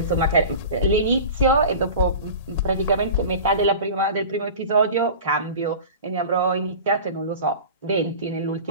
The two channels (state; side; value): inverted; both; correlation -0.35